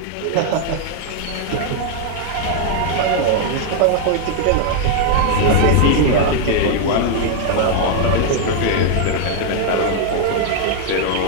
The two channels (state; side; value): different; both; correlation 0.00